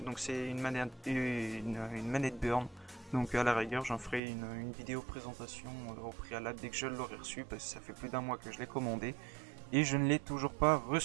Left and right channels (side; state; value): left; drops out; at 4.2 s